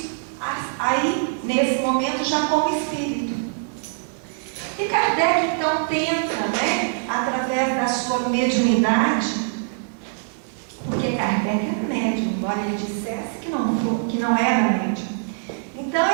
aí nesse momento já como espírito. E Kardec então tenta, através da sua mediunidade, porque Kardec era médium, embora ele dissesse que não era médium. Então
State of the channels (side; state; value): left; silent; 63 dB below the other